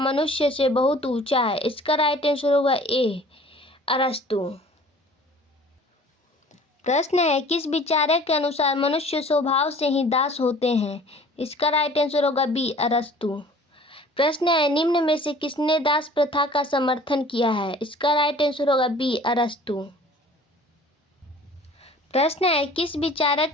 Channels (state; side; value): normal; both; correlation 0.48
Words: से बहुत ऊंचा है। इसका राइट आंसर होगा ए, अरस्तु। प्रश्न है, किस विचारक के अनुसार मनुष्य स्वभाव से ही दास होते हैं। इसका राइट आंसर होगा बी, अरस्तु। प्रश्न है, निम्न में से किसने दास प्रथा का समर्थन किया है। इसका राइट आंसर होगा बी, अरस्तु। प्रश्न है, किस विचारक